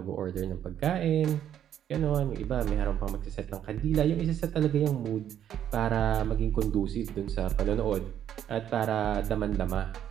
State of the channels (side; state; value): left; quieter; 10.1 dB